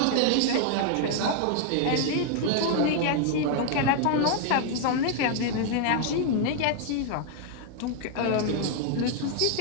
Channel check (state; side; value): different; both; correlation 0.00